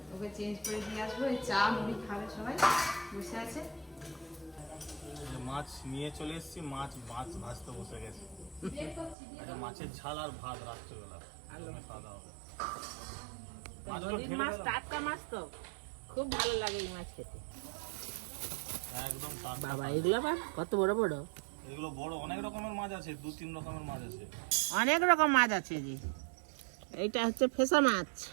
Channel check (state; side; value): drops out; left; at 9.2 s